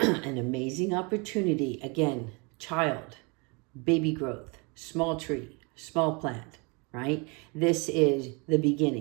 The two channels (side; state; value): left; quieter; 30.4 dB